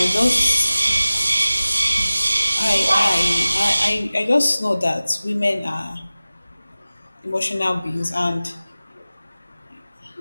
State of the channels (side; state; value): both; inverted; correlation -0.97